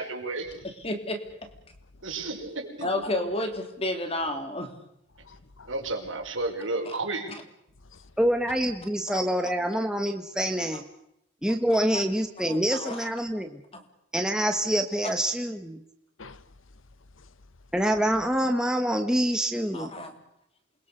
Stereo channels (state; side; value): normal; both; correlation 0.68